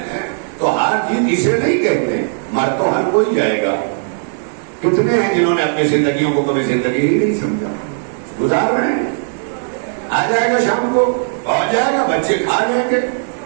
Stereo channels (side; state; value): left; silent; 67 dB below the other